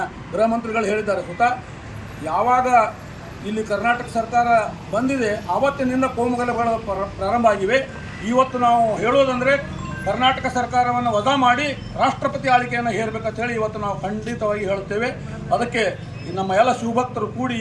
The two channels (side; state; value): both; identical; correlation 1.00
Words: ಗೃಹ ಮಂತ್ರಿಗಳು ಹೇಳಿದ್ದಾರೆ. ಸುತ ಯಾವಾಗ ಇಲ್ಲಿ ಕರ್ನಾಟಕ ಸರ್ಕಾರ ಬಂದಿದೆ ಆವತ್ತಿನಿಂದ ಕೋಮುಗಲಭೆಗಳು ಪ್ರಾರಂಭ ಆಗಿವೆ. ಇವತ್ತು ನಾವು ಹೇಳೋದಂದರೆ ಕರ್ನಾಟಕ ಸರ್ಕಾರವನ್ನು ವಜಾ ಮಾಡಿ ರಾಷ್ಟ್ರಪತಿ ಆಳ್ವಿಕೆಯನ್ನು ಹೇರಬೇಕಂತ ಹೇಳಿ ಇವತ್ತು ನಾವು ಖಂಡಿತವಾಗಿ ಹೇಳುತ್ತೇವೆ. ಅದಕ್ಕೆ ನಮ್ಮ ಎಲ್ಲ ಶಿವಭಕ್ತರು ಕೂಡಿ